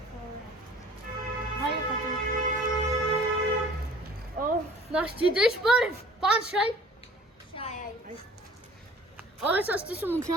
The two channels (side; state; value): both; normal; correlation 0.49